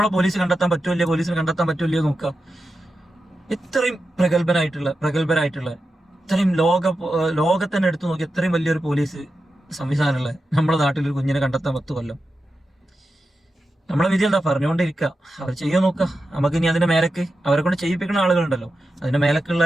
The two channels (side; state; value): both; normal; correlation 0.90